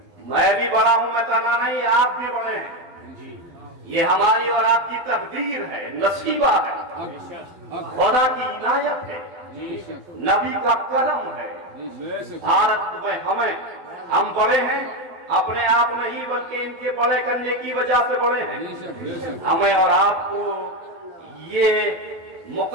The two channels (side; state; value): left; late; 12 ms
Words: मैं भी बड़ा हूं, मैं तना नहीं, आप भी बड़े हैं। ये हमारी और आपकी तकदीर है, नसीबा है, खुदा की इनायत है, नबी का करम है। भारत में हम बड़े हैं, अपने आप नहीं बल्कि इनके बड़े करने की वजह से बड़े हैं। हमें और आपको ये